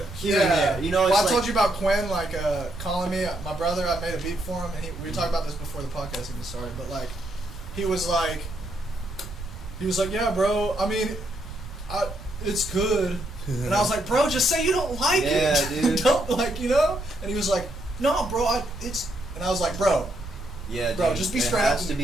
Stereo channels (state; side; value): noise; right; rumble, 11 dB below the sound